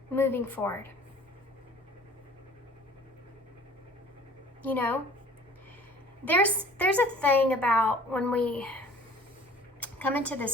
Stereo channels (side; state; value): both; normal; correlation 0.49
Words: moving forward. You know, there's a thing about when we come into